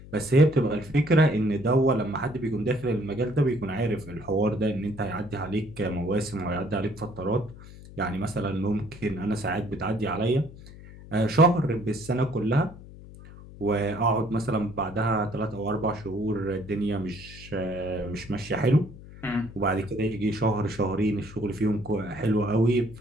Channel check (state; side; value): noise; left; hum, 17 dB below the sound